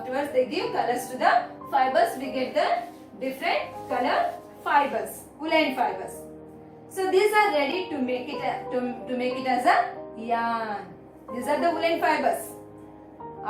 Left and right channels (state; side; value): identical; both; correlation 1.00